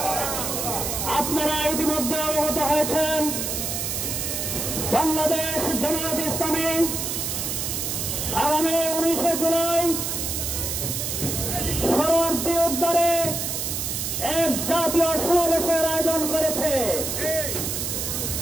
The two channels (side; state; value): right; noise; hiss, 2 dB below the sound